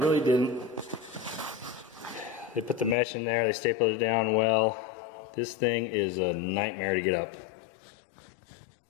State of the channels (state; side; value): drops out; right; at 3.0 s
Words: didn't. They put the mesh in there, they stapled it down well. This thing is a nightmare to get up.